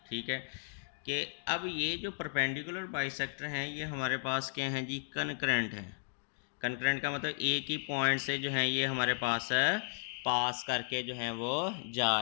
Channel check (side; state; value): right; silent; digital silence